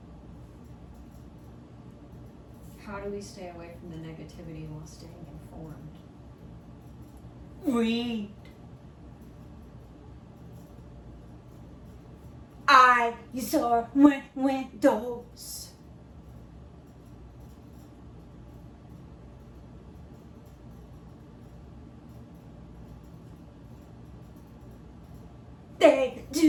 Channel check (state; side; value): identical; both; correlation 1.00